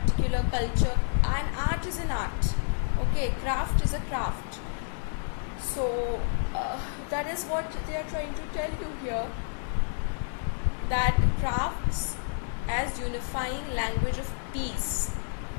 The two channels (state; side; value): silent; right; 58 dB below the other